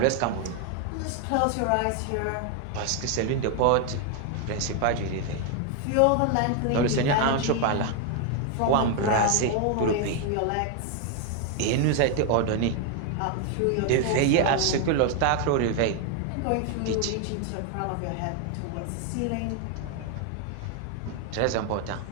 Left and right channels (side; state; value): both; different; correlation 0.01